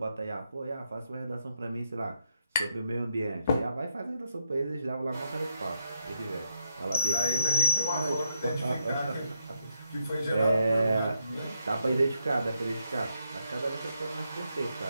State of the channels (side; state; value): both; inverted; correlation -0.79